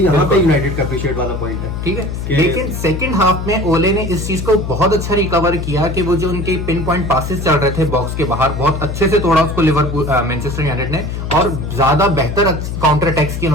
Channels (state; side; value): noise; left; hum, 5 dB below the sound